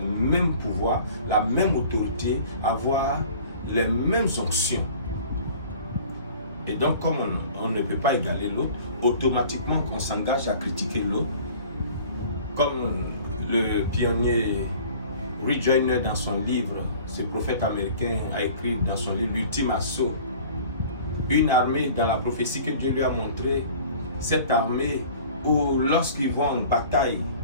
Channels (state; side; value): inverted; both; correlation -0.47